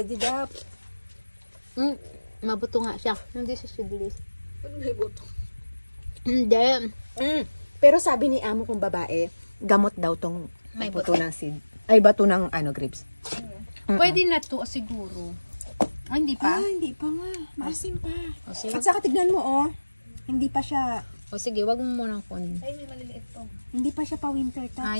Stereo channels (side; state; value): both; inverted; correlation -1.00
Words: dap. Mabuto nga siya. Hindi siya sidilis. Ano may buto? Hindi. Pero sabi ni amo kong babae, gamot daw tong May buto ng seed. Ay, bato ng grapes. Pwede na to siguro. Ah, hindi pa? Hindi pa nga. Maasim pa. O sige, At saka tignan mo, Hindi pa siya, wag mo munang kunin. Ay, may maliliit to. hindi pa siya pa winter touch.